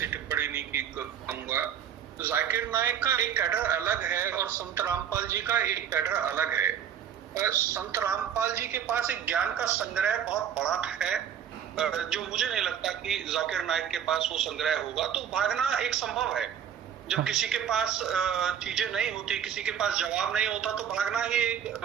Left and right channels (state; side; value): quieter; left; 8.9 dB